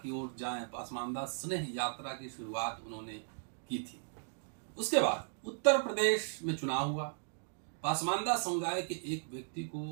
ओर जाएं। पसमानदा स्नेह यात्रा की शुरुआत उन्होंने की थी। उसके बाद उत्तर प्रदेश में चुनाव हुआ। पसमानदा समुदाय के एक व्यक्ति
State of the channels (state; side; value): silent; left; digital silence